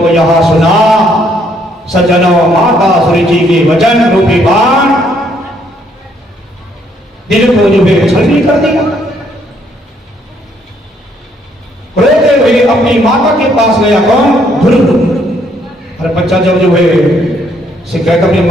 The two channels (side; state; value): both; normal; correlation 0.69